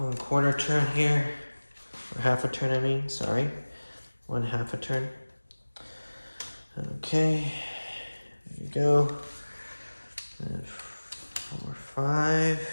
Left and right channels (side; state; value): both; inverted; correlation -1.00